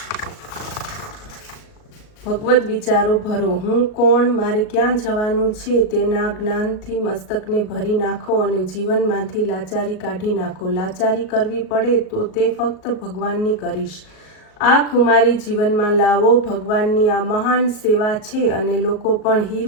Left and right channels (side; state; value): right; late; 38 ms